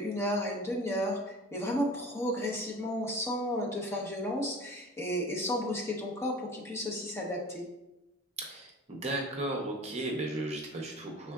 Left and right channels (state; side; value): normal; both; correlation 0.40